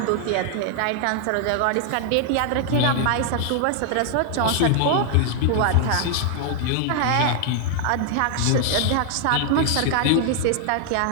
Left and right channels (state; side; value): different; both; correlation 0.00